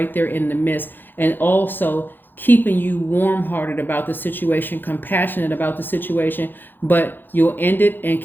there in the midst, and also keeping you warm-hearted about the situation, compassionate about the situation, but you'll end it and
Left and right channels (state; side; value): late; right; 0.094 ms